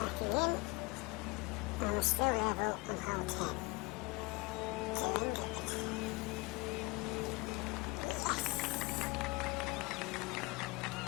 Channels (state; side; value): quieter; right; 24.9 dB